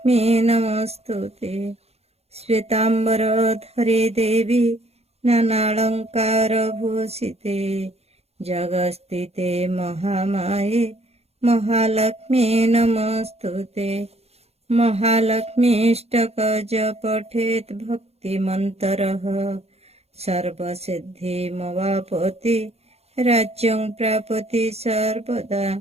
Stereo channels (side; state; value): left; late; 0.30 ms